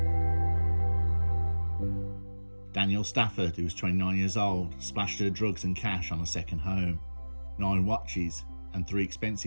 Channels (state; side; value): inverted; both; correlation -1.00